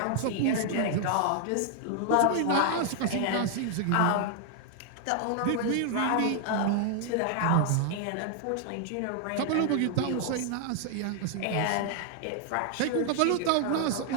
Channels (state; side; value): different; both; correlation 0.00